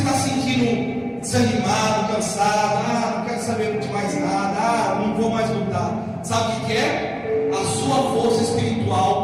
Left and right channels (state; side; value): identical; both; correlation 1.00